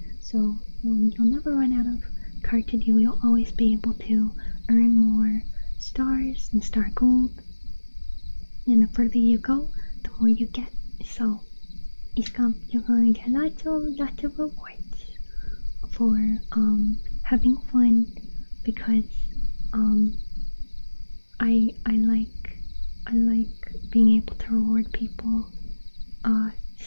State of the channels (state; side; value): inverted; both; correlation -1.00